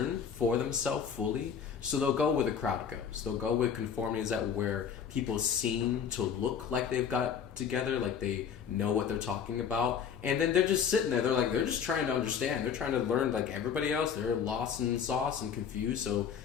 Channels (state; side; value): quieter; right; 7.5 dB